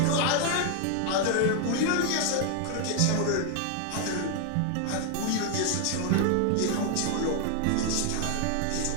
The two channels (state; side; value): different; both; correlation 0.00